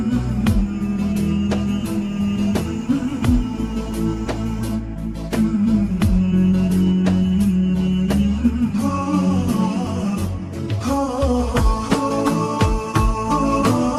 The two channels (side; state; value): both; identical; correlation 1.00